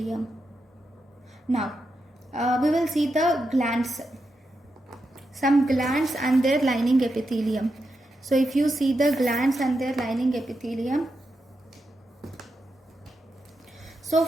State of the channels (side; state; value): both; normal; correlation 0.86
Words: Now we will see the glands, some glands and their lining epithelium. So if you see the glands and their lining epithelium, so